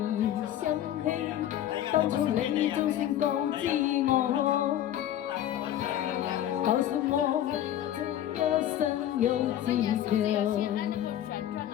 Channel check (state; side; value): quieter; right; 11.8 dB